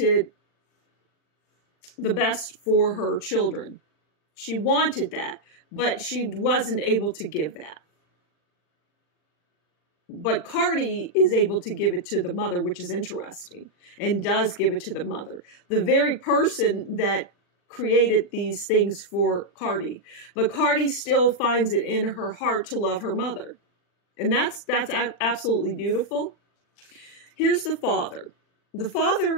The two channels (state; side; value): late; right; 40 ms